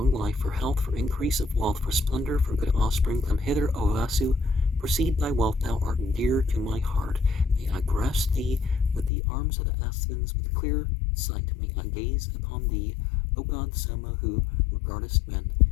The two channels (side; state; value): right; drops out; at 9.1 s